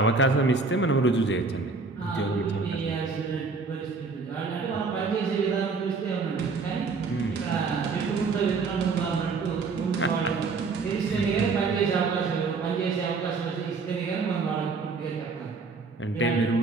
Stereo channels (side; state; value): left; quieter; 4.3 dB